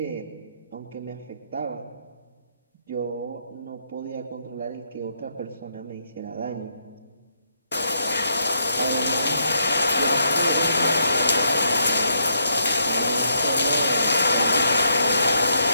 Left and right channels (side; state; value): both; inverted; correlation -0.76